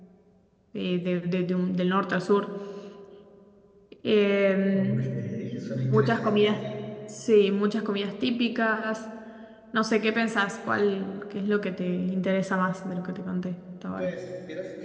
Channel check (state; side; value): identical; both; correlation 1.00